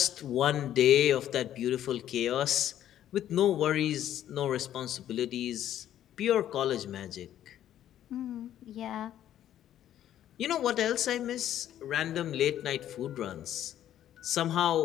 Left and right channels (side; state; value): right; quieter; 11.5 dB